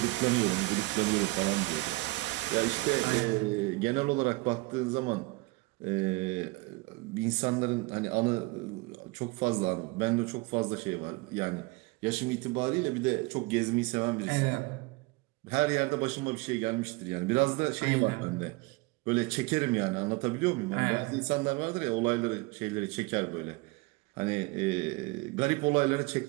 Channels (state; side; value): quieter; left; 23.1 dB